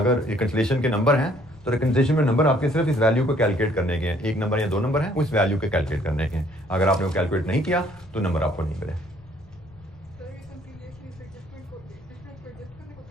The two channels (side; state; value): left; noise; rumble, 24 dB below the sound